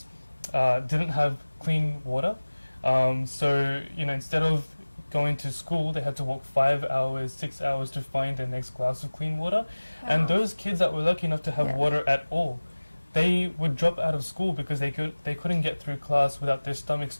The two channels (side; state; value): both; inverted; correlation -1.00